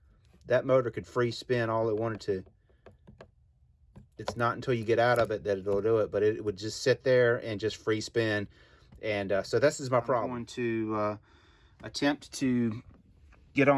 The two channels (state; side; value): identical; both; correlation 1.00